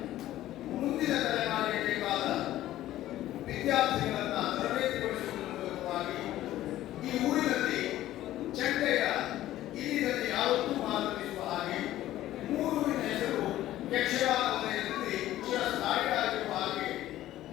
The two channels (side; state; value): right; quieter; 14.2 dB